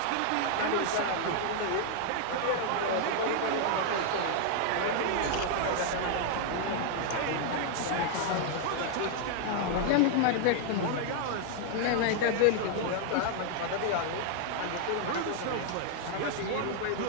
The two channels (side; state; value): both; different; correlation 0.00